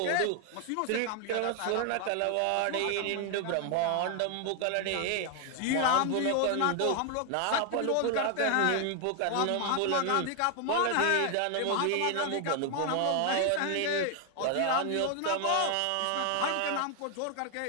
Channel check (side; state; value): both; different; correlation 0.00